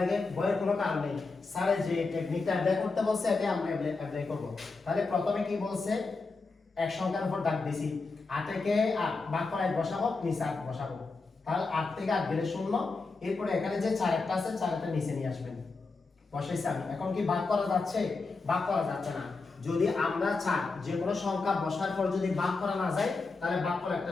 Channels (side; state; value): right; quieter; 4.0 dB